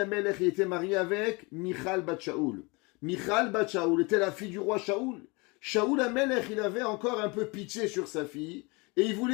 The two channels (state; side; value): quieter; right; 27.6 dB